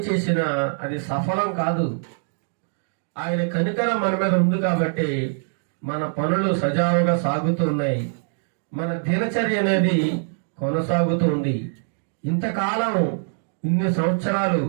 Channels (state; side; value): silent; left; digital silence